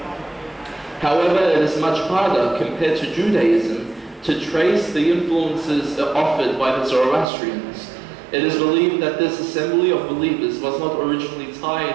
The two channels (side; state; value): left; drops out; at 7.2 s